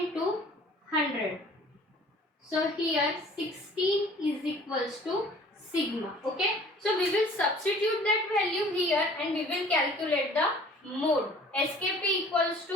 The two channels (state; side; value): normal; both; correlation 0.50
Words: 100. So here 16 is equals to sigma. Okay, so we will substitute that value here and we will calculate the mode. SKP equals